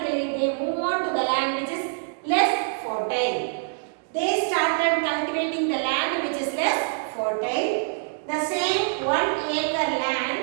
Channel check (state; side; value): silent; left; digital silence